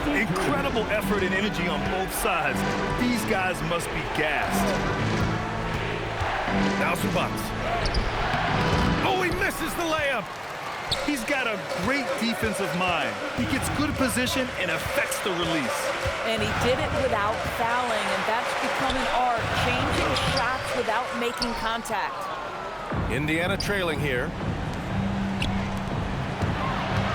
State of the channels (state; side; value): identical; both; correlation 1.00